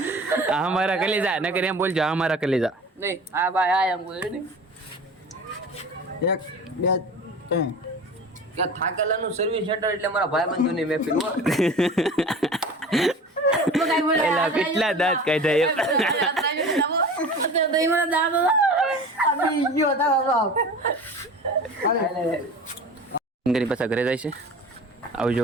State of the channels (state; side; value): normal; both; correlation 0.37